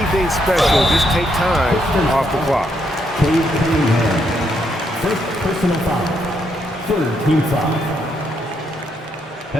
special. Just take time off the clock. Cade Cunningham. First personal foul. Third team foul.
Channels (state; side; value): normal; both; correlation 0.76